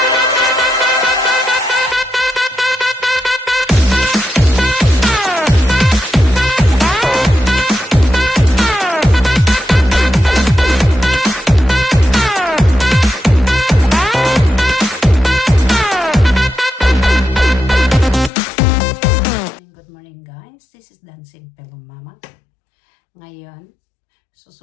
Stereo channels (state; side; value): drops out; right; at 18.3 s